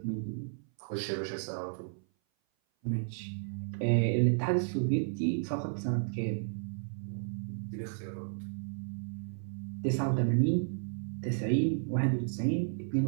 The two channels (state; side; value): silent; left; 56 dB below the other